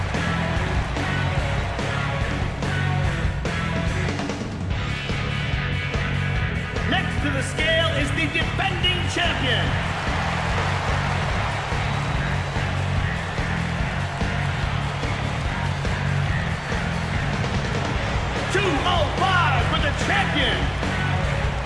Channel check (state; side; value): identical; both; correlation 1.00